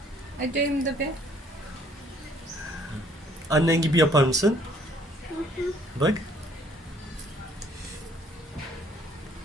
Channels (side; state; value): both; normal; correlation 0.61